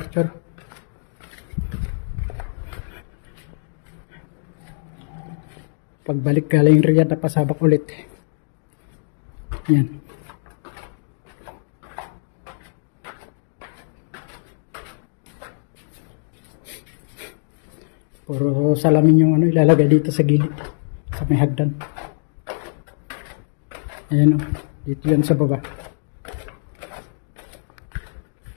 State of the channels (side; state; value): right; silent; digital silence